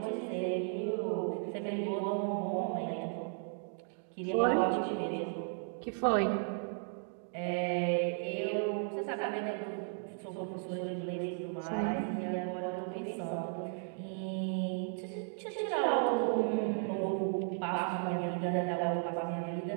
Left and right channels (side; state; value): left; silent; 54 dB below the other